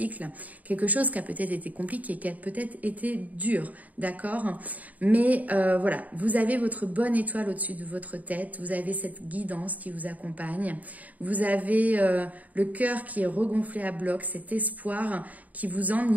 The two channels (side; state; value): left; late; 0.074 ms